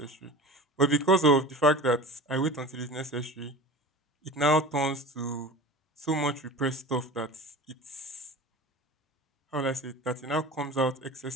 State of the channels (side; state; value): both; normal; correlation 0.35